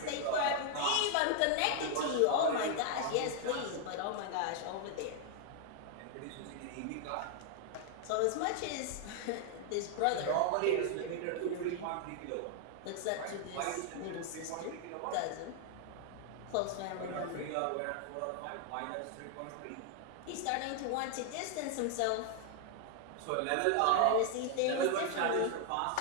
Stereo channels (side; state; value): both; different; correlation 0.00